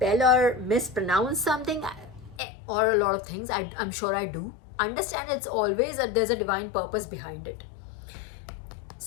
or mispronounce something, or a lot of things, I'm sure I do, understand it's always there's a divine purpose behind it.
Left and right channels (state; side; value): drops out; right; at 2.4 s